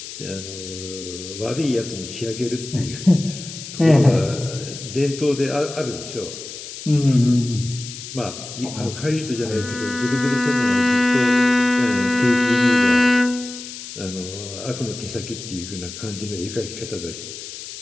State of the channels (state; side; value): noise; left; hiss, 11 dB below the sound